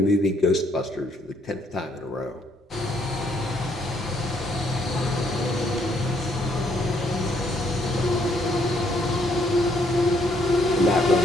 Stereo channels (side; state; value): both; normal; correlation 0.69